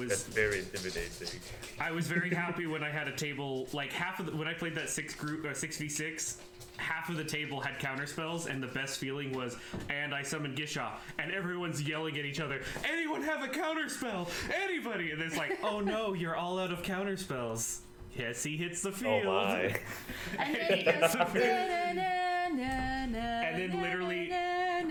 That's very intimidating. I was very happy when I had a table, like when I played that 6v6, half of the table had counter spells, and the best feeling was, and I summoned Gishath, and everyone's yelling at each other, anyone have a counter spell? Anybody? And it's like, oh no, you're all out of counter spells. Yes, he hits the field. Oh my. And then he goes, and then literally,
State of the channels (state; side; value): identical; both; correlation 1.00